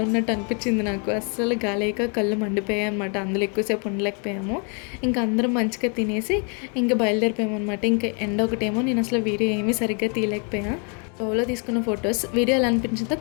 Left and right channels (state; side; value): quieter; right; 38.2 dB